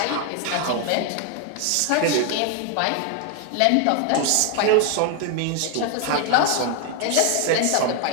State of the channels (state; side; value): different; both; correlation 0.01